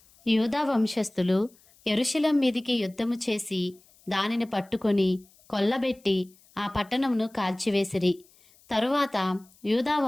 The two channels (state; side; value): noise; left; hiss, 30 dB below the sound